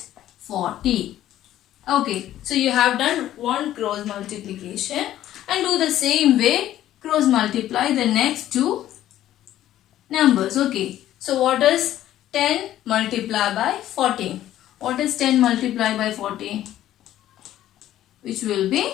Okay, so you have done one cross multiplication, and do the same way, cross multiply the next two numbers. Okay, so what is 10 multiplied by 14? What is 10 multiplied by 14? Which will be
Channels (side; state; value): right; quieter; 12.9 dB